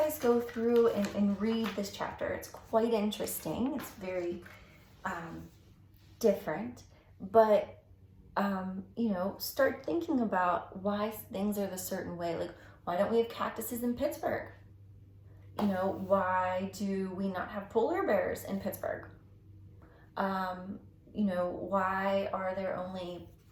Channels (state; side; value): identical; both; correlation 1.00